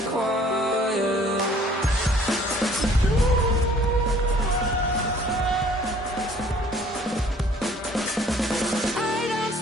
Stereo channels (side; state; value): both; normal; correlation 0.56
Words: quiet. I don't